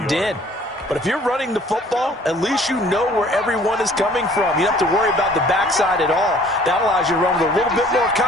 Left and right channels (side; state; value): both; normal; correlation 0.55